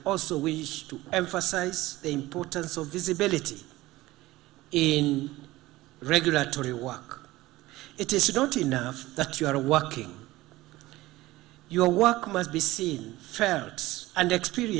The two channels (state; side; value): quieter; left; 18.1 dB